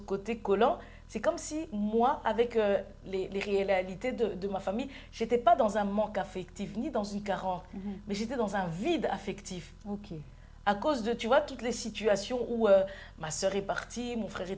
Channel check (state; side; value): identical; both; correlation 1.00